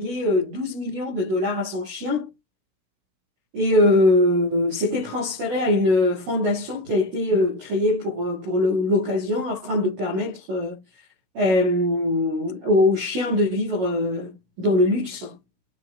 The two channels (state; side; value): late; left; 16 ms